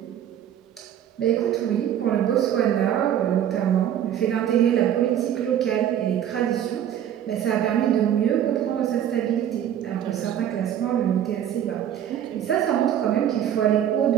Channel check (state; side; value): quieter; left; 10.3 dB